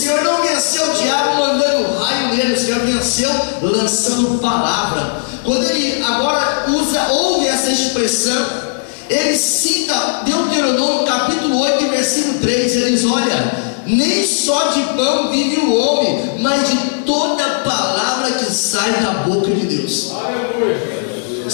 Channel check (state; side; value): silent; right; digital silence